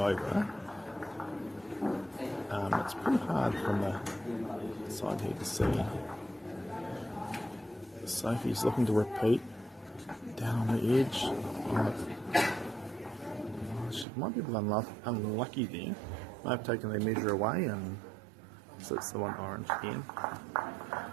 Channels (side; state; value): left; drops out; at 14.1 s